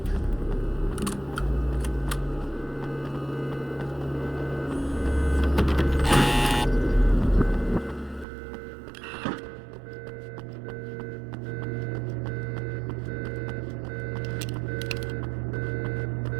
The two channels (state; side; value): drops out; left; at 8.2 s